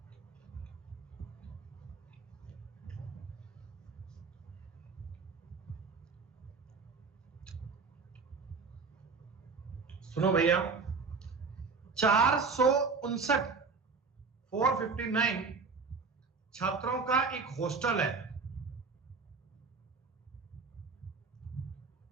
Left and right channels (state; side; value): quieter; left; 4.7 dB